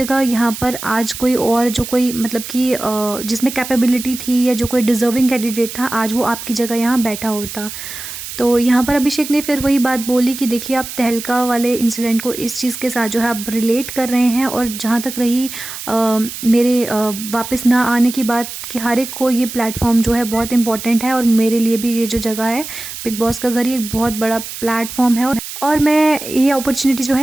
यहाँ पर आज कोई और जो कोई मतलब कि जिसमें कैपेबिलिटी थी या जो कोई डिज़र्विंग कैंडिडेट था, आज वो आपकी जगह यहाँ बैठा होता। तो यहाँ पर अभिषेक ने फिर वही बात बोली कि देखिए आप तहलका वाले इंसिडेंट को इस चीज़ के साथ जो है आप रिलेट कर रहे हैं, और जहाँ तक रही मेरे वापस ना आने की बात, कि हर एक को ये प्लेटफॉर्म जो है बहुत इंपॉर्टेंट है, और मेरे लिए भी ये जो जगह है बिग बॉस का घर, ये एक बहुत बड़ा प्लेटफॉर्म है, और मैं ये अपॉर्चुनिटी जो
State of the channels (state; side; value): noise; right; hiss, 10 dB below the sound